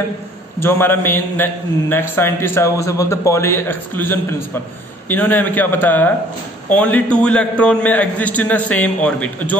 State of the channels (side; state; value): both; normal; correlation 0.56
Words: जो हमारा मेन नेक्स्ट साइंटिस्ट है उसे बोलते हैं पॉली एक्सक्लूजन प्रिंसिपल। इन्होंने हमें क्या बताया, ओनली 2 इलेक्ट्रॉन में exist in a same orbit.